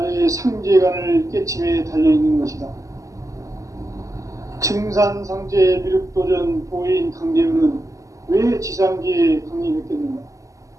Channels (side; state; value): left; late; 0.16 ms